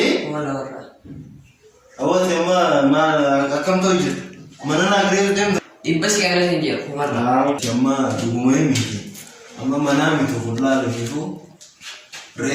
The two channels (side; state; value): both; identical; correlation 1.00